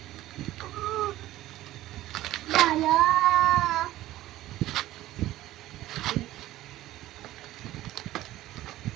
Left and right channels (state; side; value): quieter; left; 15.3 dB